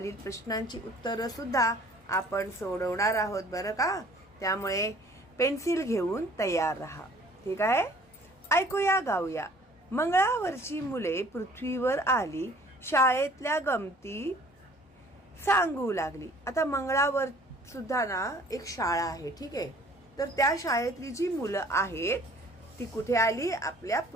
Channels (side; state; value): both; normal; correlation 0.53